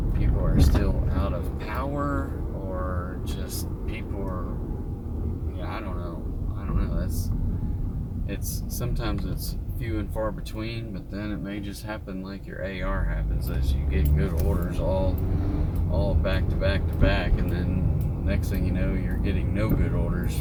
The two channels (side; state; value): both; identical; correlation 1.00